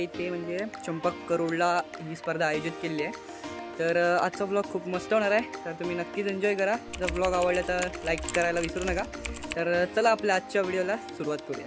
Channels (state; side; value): identical; both; correlation 1.00